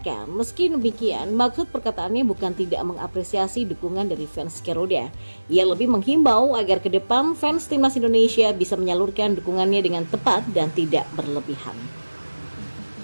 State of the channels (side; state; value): both; inverted; correlation -1.00